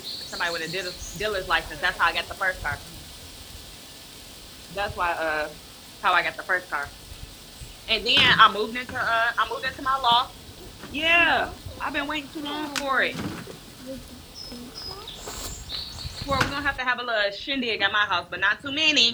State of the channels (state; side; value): identical; both; correlation 1.00